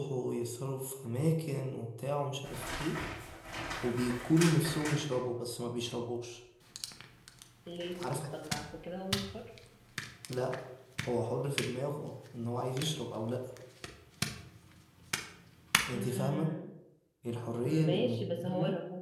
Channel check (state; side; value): identical; both; correlation 1.00